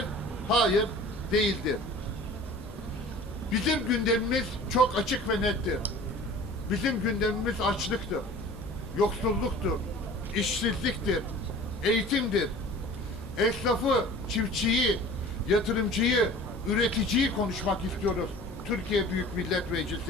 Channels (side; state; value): left; noise; hum, 17 dB below the sound